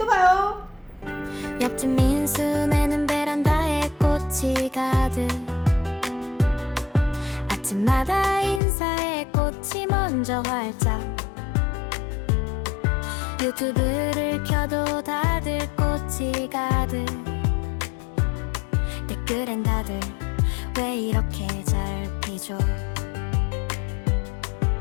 봐요. 옆집 민수네는 베란다에 꽃이 가득 먼저 활짝 유튜브를 켜도 다들 꽃이 가득 댓글엔 다들 왜 이렇게 잘 피죠?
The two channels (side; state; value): right; drops out; at 8.6 s